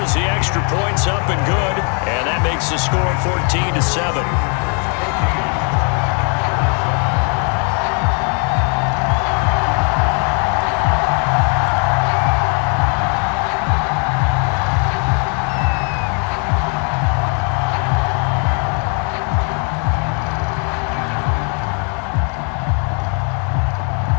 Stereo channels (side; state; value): right; quieter; 39.1 dB